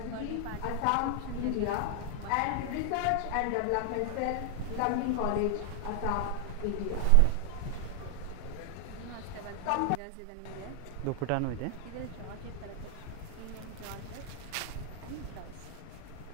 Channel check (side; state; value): both; different; correlation 0.00